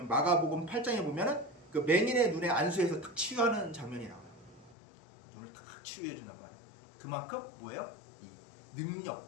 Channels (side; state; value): right; drops out; at 4.8 s